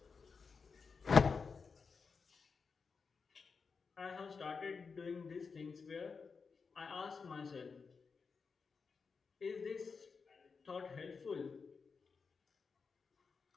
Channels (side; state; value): right; quieter; 5.2 dB